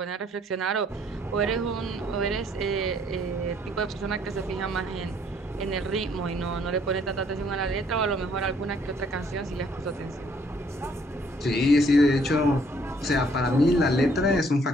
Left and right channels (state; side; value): normal; both; correlation 0.64